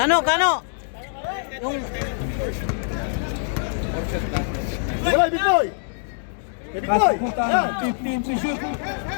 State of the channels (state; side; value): silent; right; 63 dB below the other